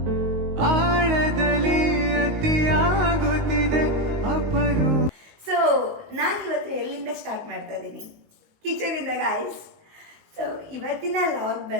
ಆಳದಲ್ಲಿ ಅತಿಯಾಗುತ್ತಿದೆ ಅಪರು. ಸೊ ನಾನು ಇವತ್ತು ಎಲ್ಲಿಂದ ಸ್ಟಾರ್ಟ್ ಮಾಡ್ತಾ ಇದ್ದೀನಿ? ಕಿಚನಿಂದ ಗಾಯ್ಸ್. ಸೊ ಇವತ್ತಿನ ಲಾಗ್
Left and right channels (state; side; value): late; left; 19 ms